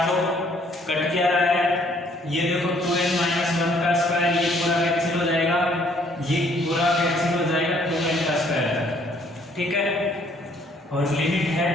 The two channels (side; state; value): both; normal; correlation 0.63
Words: लो, कट क्या रहा है ये देखो 2n माइनस 1 का स्क्वायर, ये पूरा कैंसिल हो जाएगा, ये पूरा कैंसिल हो जाएगा 2n का स्क्वायर। ठीक है, और लिमिट है